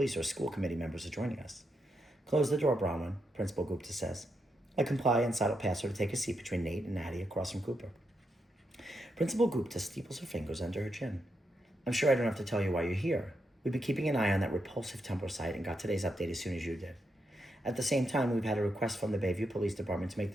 or school committee members are joining us. Close the door, Bronwyn, Principal Gupta says. I comply and sidle past her to take a seat between Nate and Natty across from Cooper. Principal Gupta steeples her fingers under her chin. I'm sure I don't have to tell you why you're here. We've been keeping an eye on that repulsive Tumblr site and got today's update as soon as you did. At the same time, we've had a request from the Bayview Police Department to make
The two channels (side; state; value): both; normal; correlation 0.83